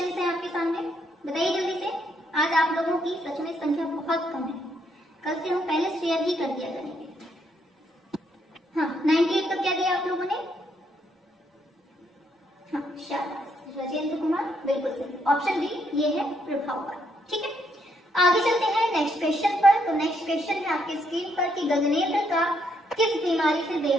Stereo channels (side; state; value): both; normal; correlation 0.74